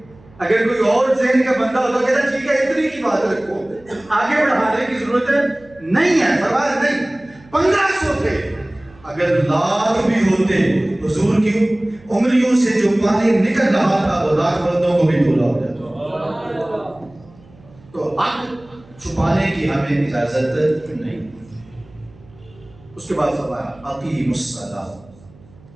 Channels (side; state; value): right; noise; hum, 26 dB below the sound